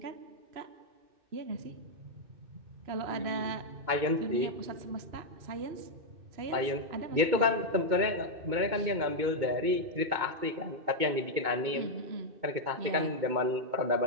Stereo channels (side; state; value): left; late; 2.2 ms